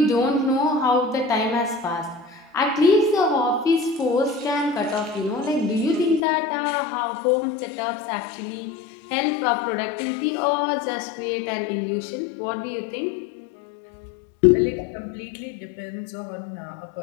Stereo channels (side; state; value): right; drops out; at 6.2 s